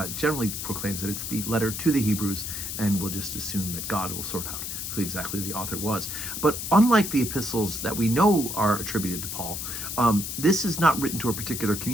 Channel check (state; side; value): noise; left; hiss, 5 dB below the sound